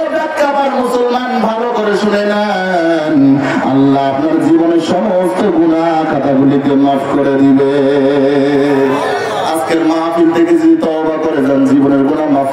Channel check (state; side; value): identical; both; correlation 1.00